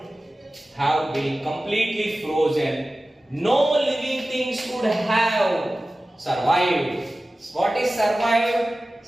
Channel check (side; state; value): both; normal; correlation 0.96